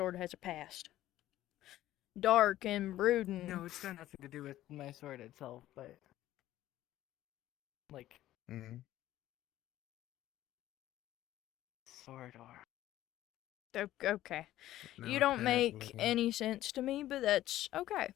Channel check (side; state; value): right; quieter; 14.1 dB